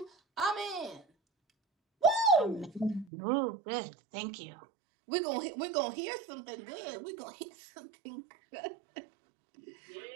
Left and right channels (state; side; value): drops out; left; at 3.1 s